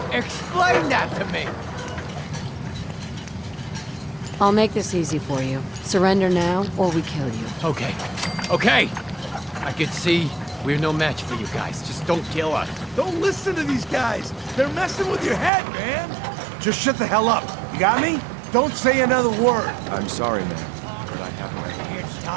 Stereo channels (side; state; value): left; drops out; at 15.5 s